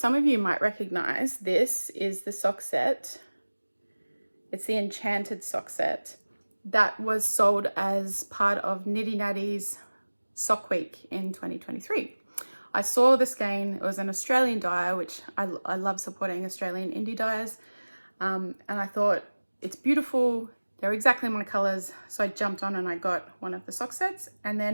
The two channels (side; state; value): both; inverted; correlation -1.00